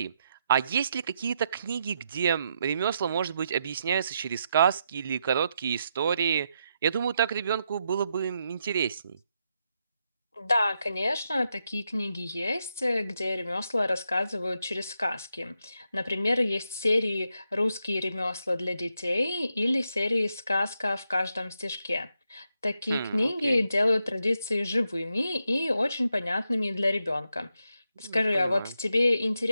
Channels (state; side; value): inverted; both; correlation -0.83